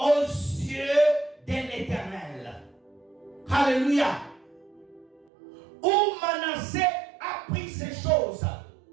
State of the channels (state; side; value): drops out; left; at 5.2 s